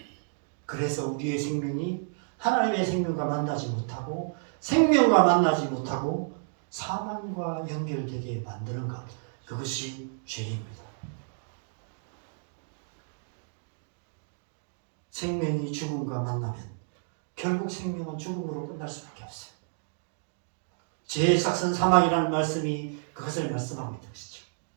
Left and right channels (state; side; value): silent; left; digital silence